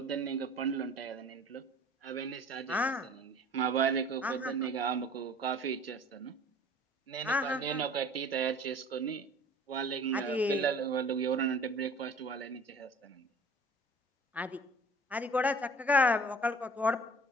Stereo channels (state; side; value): normal; both; correlation 0.47